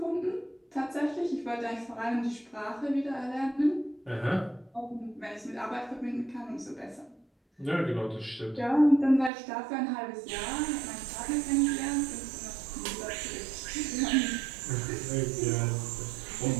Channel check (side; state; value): left; drops out; at 9.3 s